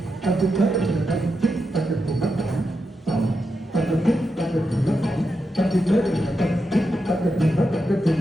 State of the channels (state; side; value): normal; both; correlation 0.87